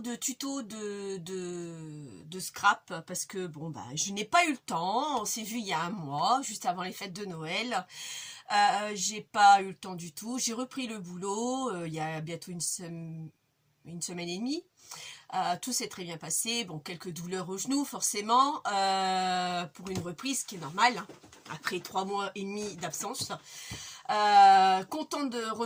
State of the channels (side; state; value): both; identical; correlation 1.00